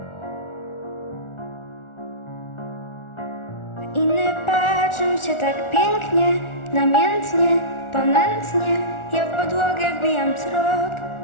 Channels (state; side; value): late; right; 1.4 ms